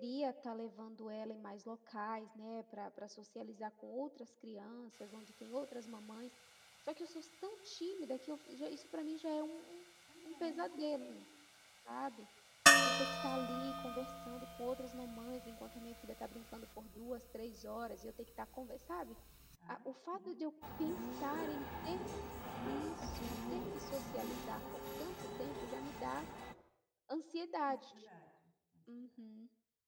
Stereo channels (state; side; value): identical; both; correlation 1.00